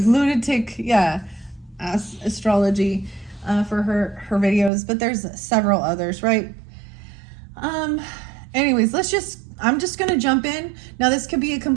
astrology for her videos, but there's several others, right? Anyways, I'm just gonna jump in. Now this could be a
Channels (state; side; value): drops out; left; at 4.7 s